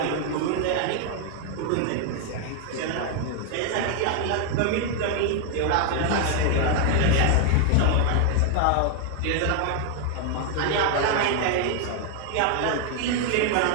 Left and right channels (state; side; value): different; both; correlation 0.00